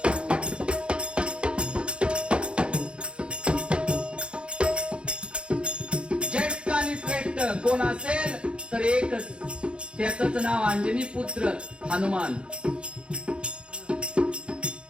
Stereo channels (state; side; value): late; left; 0.056 ms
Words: ज्येष्ठ आणि श्रेष्ठ कोण असेल तर एकच, त्याच नाव अंजनी पुत्र हनुमान.